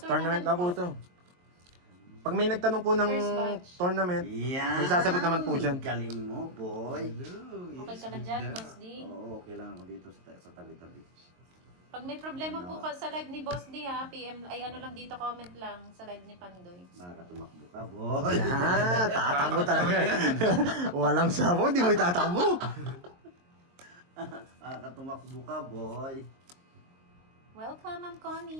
tournament na po ito. Pag may nagtanong po ng First batch. tournament, Yan. may sasagot naman po dyan. Galing mo, boy. Hello. Okay ka lang dyan, Boss D. Oo, okay lang ako dito sa tabi-tabi. Pag may problema po ka sa live ni Boss D ha, PM, ay ano lang dito, comment lang sa live ni Pandoy. Makakatumakbo ka, boy. Tatakbo talaga. Walang sabaw, di mo itatakbo. Makakatumakbo ka, boy. Welcome, Ma'am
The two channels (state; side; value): late; left; 22 ms